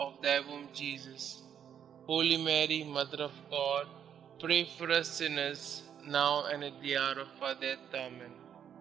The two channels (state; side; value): quieter; left; 8.8 dB